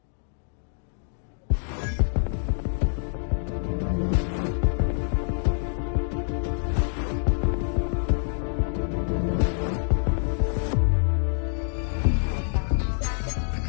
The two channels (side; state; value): right; silent; 58 dB below the other